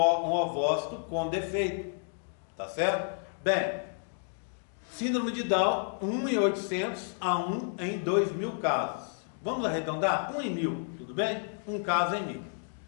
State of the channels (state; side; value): silent; right; digital silence